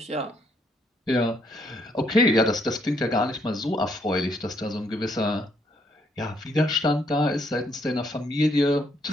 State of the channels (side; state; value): both; normal; correlation 0.71